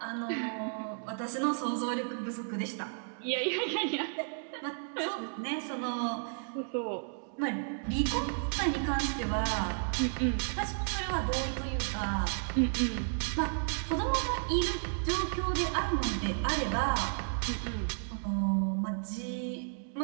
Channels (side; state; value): left; silent; digital silence